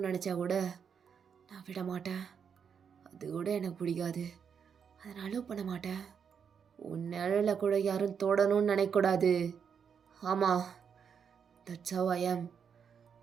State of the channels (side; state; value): left; quieter; 7.0 dB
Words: நினச்சா கூட நான் விட மாட்டேன். அது கூட எனக்கு பிடிக்காது. அதை நான் அலோவ் பண்ண மாட்டேன். உன் நிழலை கூட யாரும் தொடணும்னு நினைக்கக்கூடாது. ஆமாம், தட்ஸ் ஹவ் ஐ ஆம்.